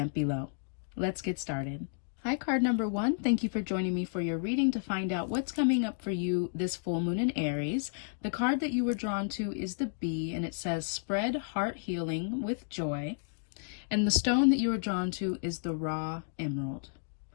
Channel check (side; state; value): right; silent; digital silence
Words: below. Let's get started. Hi, card number 1. Thank you for joining me for your reading to find out what's coming up for you this full moon in Aries. The card that you were drawn to is the Bee, and it says spread heart healing with joy. And the stone that you were drawn to is the raw emerald.